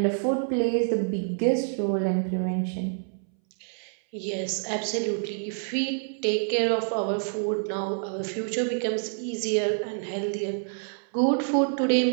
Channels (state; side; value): silent; left; 60 dB below the other